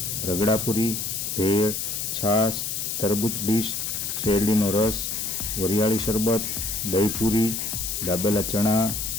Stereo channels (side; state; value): left; noise; hiss, 3 dB below the sound